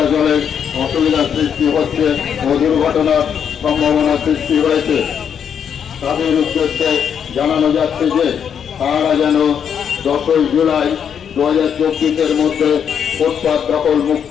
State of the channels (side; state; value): right; quieter; 7.9 dB